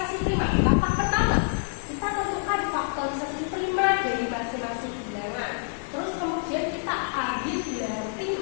prima. Langkah pertama, kita tentukan faktorisasi prima dari masing-masing bilangan. Terus kemudian kita ambil bilangan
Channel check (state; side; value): silent; right; digital silence